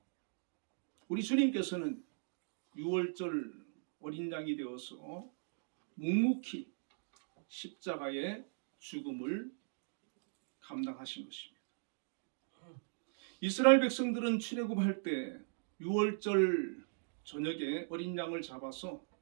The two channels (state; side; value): silent; left; digital silence